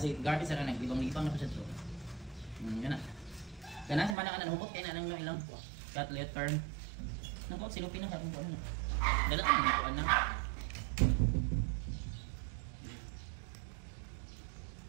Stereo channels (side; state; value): left; drops out; at 4.2 s